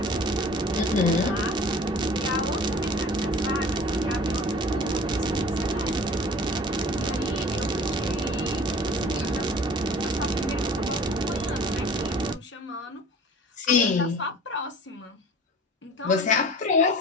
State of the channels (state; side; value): normal; both; correlation 0.45